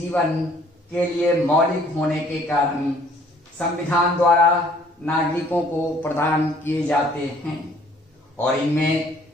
के लिए मौलिक होने के कारण संविधान द्वारा नागरिकों को प्रदान किए जाते हैं, और इनमें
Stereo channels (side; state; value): both; normal; correlation 0.58